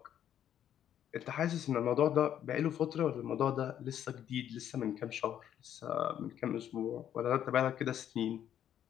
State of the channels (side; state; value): right; quieter; 10.3 dB